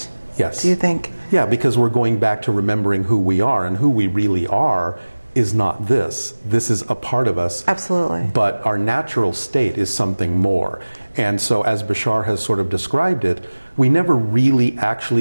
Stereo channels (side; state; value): both; inverted; correlation -1.00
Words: Yes. Do you think? Yeah, because we're going back to remembering who we are, and who we really are is not this. This is a part of us. Absolutely. But our natural state is something more. And so as Bashar has sort of described it, we never really